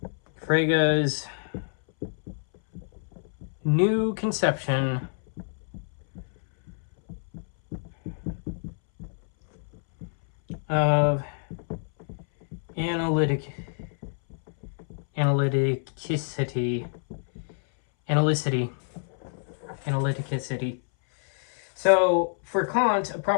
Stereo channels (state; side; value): silent; right; 60 dB below the other